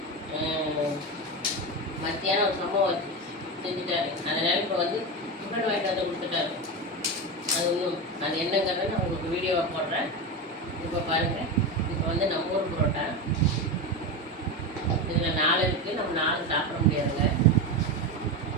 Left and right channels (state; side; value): normal; both; correlation 0.18